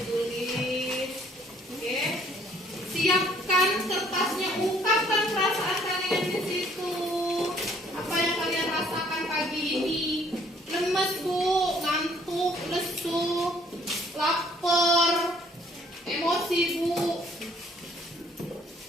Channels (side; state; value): both; normal; correlation 0.61